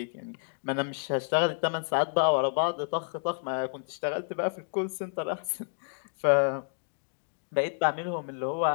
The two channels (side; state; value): right; silent; digital silence